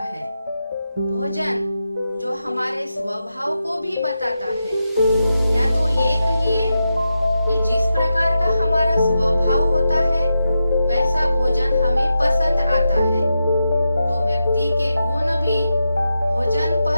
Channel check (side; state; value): both; inverted; correlation -0.88